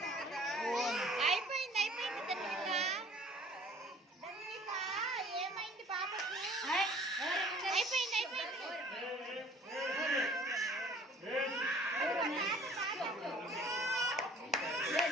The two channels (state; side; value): normal; both; correlation 0.52